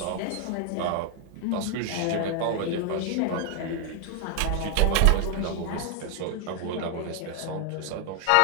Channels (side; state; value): both; different; correlation 0.00